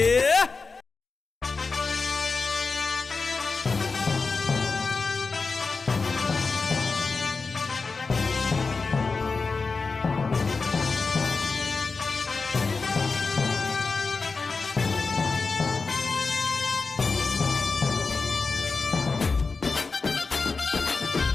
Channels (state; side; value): quieter; right; 4.3 dB